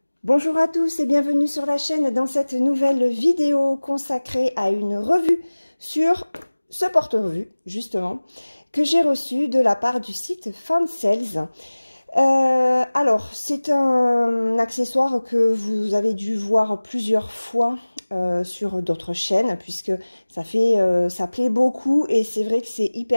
Bonjour à tous et bienvenue sur la chaîne dans cette nouvelle vidéo consacrée à une revue sur ce porte-revue, justement, que j'ai reçu de la part du site Fansales. Alors, c'est un accessoire que vous avez dû voir plusieurs fois sur d'autres chaînes, puisque ça plaît beaucoup et c'est vrai que c'est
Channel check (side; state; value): both; inverted; correlation -1.00